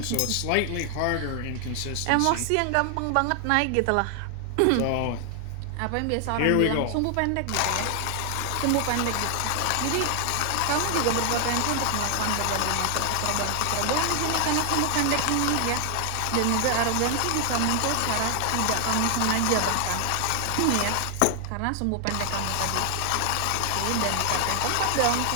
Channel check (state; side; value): different; both; correlation 0.00